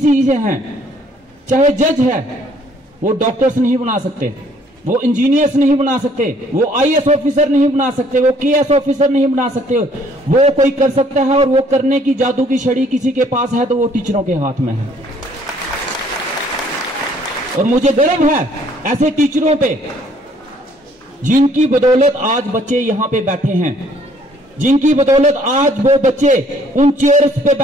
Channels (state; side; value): normal; both; correlation 0.61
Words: हैं, चाहे जज है, वो डॉक्टर्स नहीं बना सकते, वो इंजीनियर्स नहीं बना सकते, वो आईएएस ऑफिसर नहीं बना सकते, वो केएस ऑफिसर नहीं बना सकते। वो कोई कर सकता है और वो करने की जादू की छड़ी किसी के पास है तो वो टीचरों के हाथ में है। और मुझे गर्व है ऐसे टीचरों पे जिनकी बदौलत आज बच्चे यहां पे बैठे हैं, जिनकी बदौलत आज वो बच्चे उन चेयर्स पे